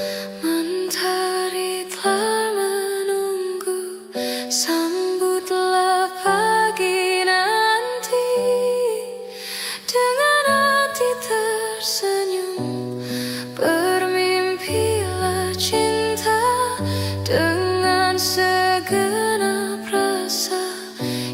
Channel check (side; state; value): both; identical; correlation 1.00